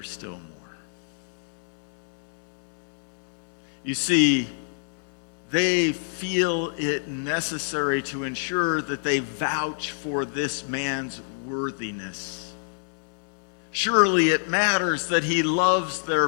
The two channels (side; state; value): right; silent; 60 dB below the other